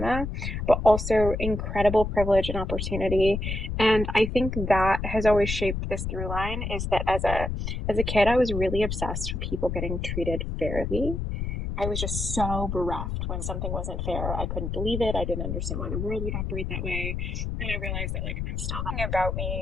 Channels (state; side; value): noise; left; rumble, 3 dB below the sound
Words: but also incredible privilege and opportunity. And I think that has always shaped this through line is that as a kid, I was really obsessed with people getting treated fairly. I was just so bereft when something wasn't fair. I couldn't believe it. I didn't understand why the world would operate that way. And I realized that like I'm still thing about